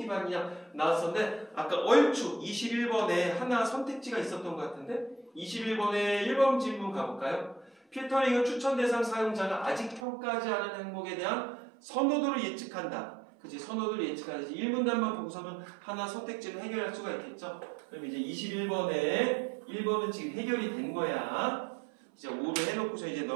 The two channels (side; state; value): left; drops out; at 10.1 s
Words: 나왔었는데 아까 얼추 21번에 하나 선택지가 있었던 것 같은데 21번에 1번 질문 가볼까요? 필터링은 추천 대상 사용자가 아직 평가하지 않은 항목에 대한 선호도를 예측한다. 그치? 선호도를 예측하지. 1문단만 보고서는 하나 선택지를 해결할 수가 있겠죠? 그럼 이제 21번에 1번은 지금 해결이 된 거야. 이제 5를 해놓고서 이제